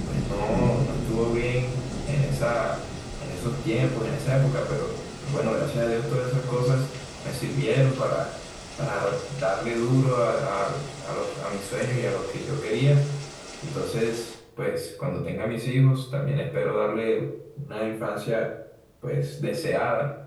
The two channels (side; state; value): both; identical; correlation 1.00